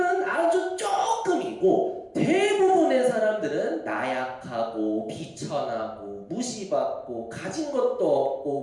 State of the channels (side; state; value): both; identical; correlation 1.00